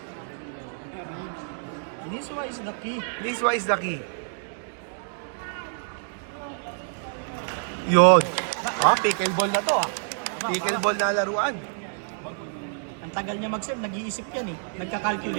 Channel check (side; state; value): left; silent; digital silence